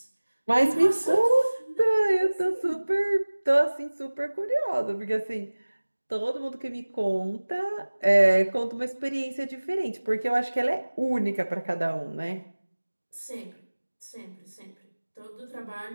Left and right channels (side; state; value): both; inverted; correlation -1.00